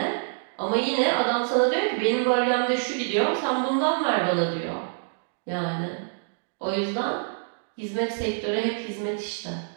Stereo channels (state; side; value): silent; left; digital silence